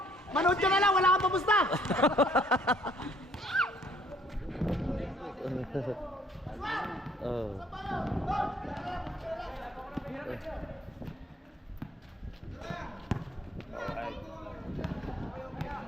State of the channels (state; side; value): normal; both; correlation 0.62